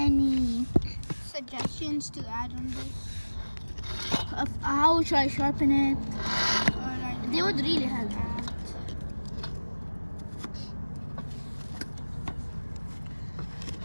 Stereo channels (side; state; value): both; inverted; correlation -1.00